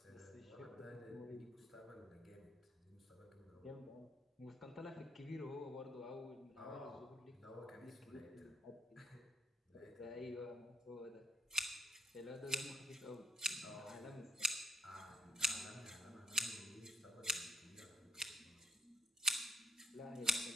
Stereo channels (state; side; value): normal; both; correlation 0.70